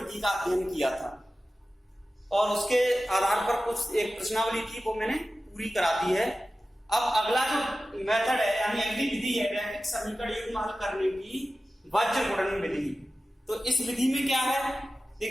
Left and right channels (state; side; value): normal; both; correlation 0.95